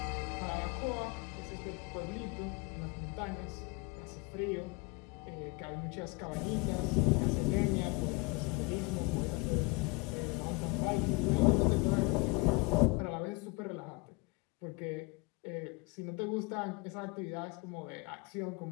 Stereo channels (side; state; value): right; quieter; 26.4 dB